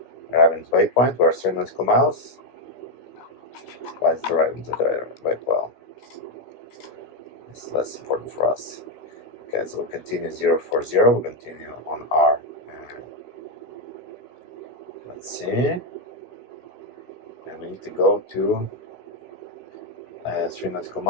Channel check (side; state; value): right; late; 16 ms